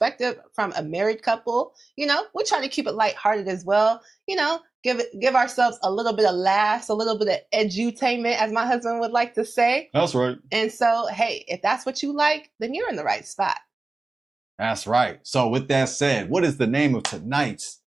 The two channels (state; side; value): quieter; left; 3.2 dB